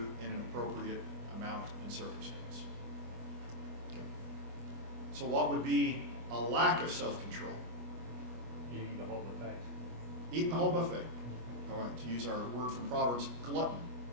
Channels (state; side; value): late; left; 25 ms